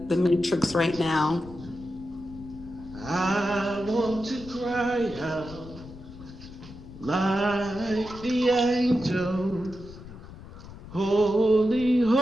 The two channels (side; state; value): left; noise; rumble, 16 dB below the sound